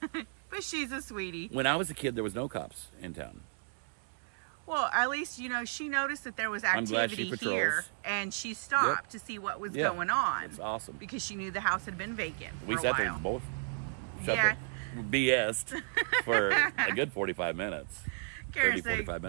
But she's a sweetie. When I was a kid, there was no cops in town. Well, at least, you know, she noticed that there was I'm glad activity she patrols. here, and she stopped to see what was going on. It's awesome. Because she knew the house had been vacant We for a sat there while. and both Yeah. BS'd for a good 45 minutes. Karen 30, said, 45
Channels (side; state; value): left; silent; digital silence